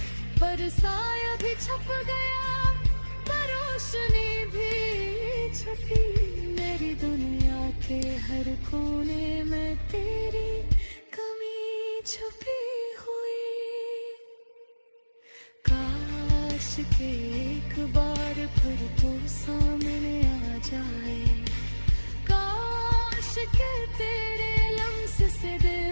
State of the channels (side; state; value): both; inverted; correlation -1.00